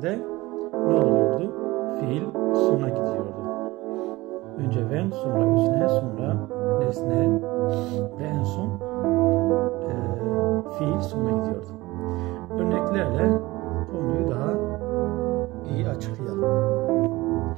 ne oluyordu? Fiil sona gidiyordu. Önce when, sonra özne, sonra nesne ve en son fiil sona gidiyordu. Örneklerle konuyu daha iyi açıklayalım.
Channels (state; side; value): quieter; left; 20.1 dB